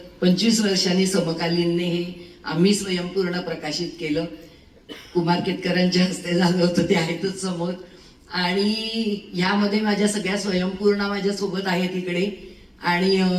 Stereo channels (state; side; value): identical; both; correlation 1.00